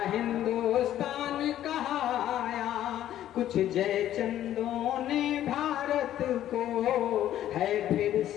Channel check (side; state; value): right; quieter; 12.1 dB